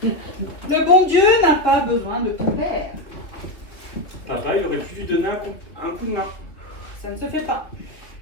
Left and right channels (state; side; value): late; right; 2.7 ms